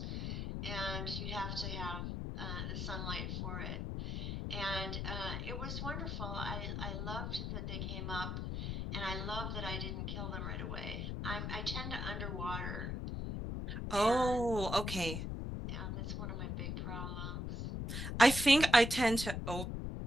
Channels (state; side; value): noise; left; rumble, 3 dB below the sound